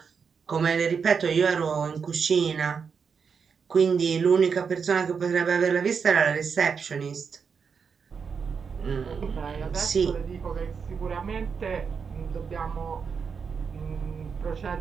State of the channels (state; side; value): quieter; left; 6.0 dB